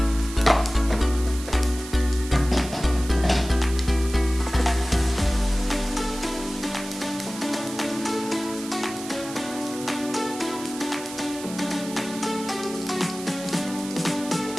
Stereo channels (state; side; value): noise; right; hiss, 13 dB below the sound